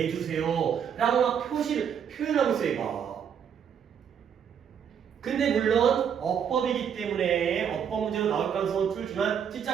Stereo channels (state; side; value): quieter; left; 8.0 dB